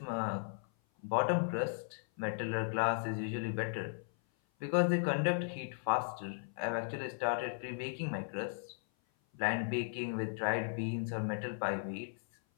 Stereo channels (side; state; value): right; silent; 54 dB below the other